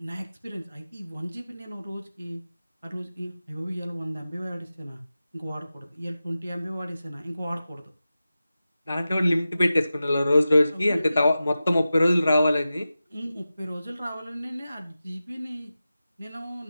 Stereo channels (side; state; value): both; inverted; correlation -0.94